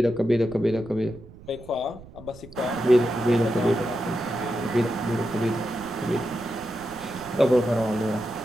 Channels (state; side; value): noise; right; rumble, 19 dB below the sound